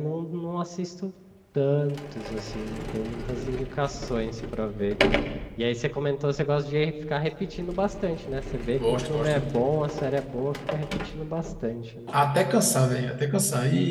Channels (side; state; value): both; identical; correlation 1.00